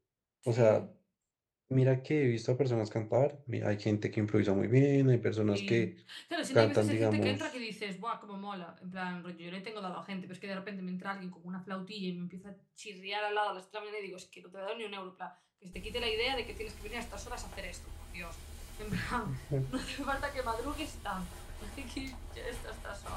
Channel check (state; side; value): identical; both; correlation 1.00